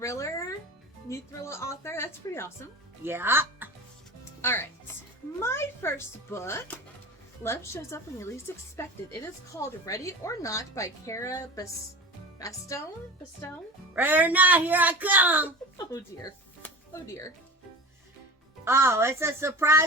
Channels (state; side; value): normal; both; correlation 0.34